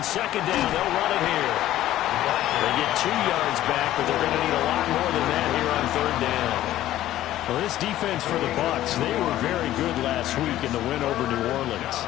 second down, they'll run it here. They get 2 yards back, but they're going to need a lot more than that here on third down. Well, this defense for the Bucs, they were very good last week in the win over New Orleans.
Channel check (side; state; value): right; quieter; 13.8 dB